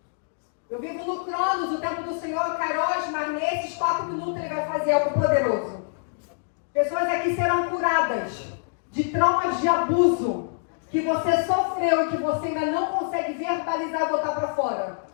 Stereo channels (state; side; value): silent; right; digital silence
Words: Eu vivo no Cronos, o tempo do Senhor, Kairos, mas nesses 4 minutos Ele vai fazer algo poderoso. Pessoas aqui serão curadas de traumas de abuso que você sofreu e que você ainda não consegue verbalizar e botar para fora.